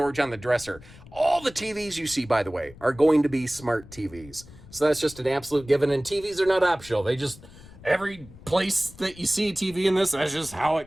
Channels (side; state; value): left; noise; rumble, 20 dB below the sound